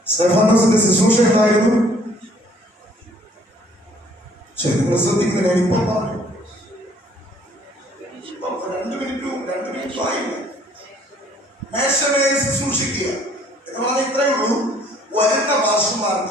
സ്തെഫാനോസിന്റെ ശുശ്രൂഷ എന്തായിരുന്നു? ശരി, നിങ്ങൾ ശ്രദ്ധിക്കുന്നില്ല. ഇപ്പൊ 2 മിനിറ്റും ആയില്ല. മേശമേൽ ശുശ്രൂഷിക്കുക എന്ന് പറഞ്ഞാൽ ഇത്രയേ ഉള്ളൂ. വരുന്ന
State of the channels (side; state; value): both; normal; correlation 0.59